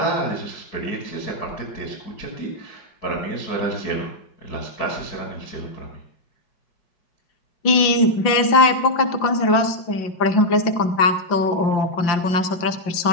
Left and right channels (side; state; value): right; late; 5.7 ms